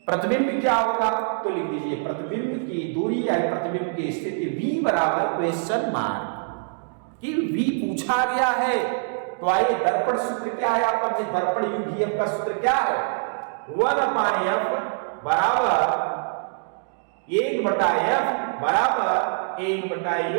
प्रतिबिंब क्या होगा? तो लिख दीजिए प्रतिबिंब की दूरी या प्रतिबिंब की स्थिति V बराबर क्वेश्चन मार्क कि V पूछा गया है। तो आइए दर्पण सूत्र क्या है आपका? दर्पण यूवीएफ का सूत्र क्या है? 1/f बराबर 1/f बराबर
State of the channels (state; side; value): silent; left; digital silence